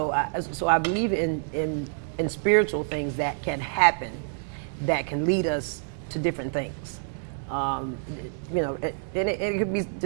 I believe in spiritual things that can happen, that can lead us to different things. And it could be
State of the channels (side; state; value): left; silent; 60 dB below the other